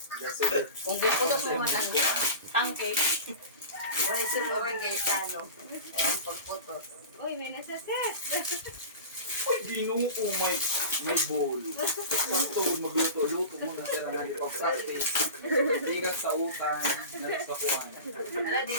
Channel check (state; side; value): inverted; both; correlation -0.32